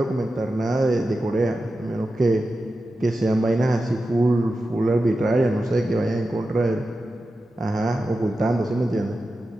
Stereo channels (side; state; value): both; normal; correlation 0.92